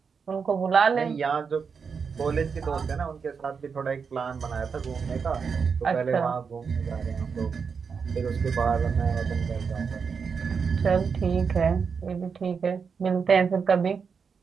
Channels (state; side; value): quieter; left; 5.9 dB